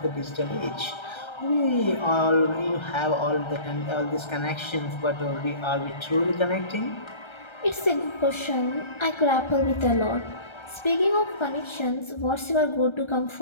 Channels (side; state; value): right; late; 1.3 ms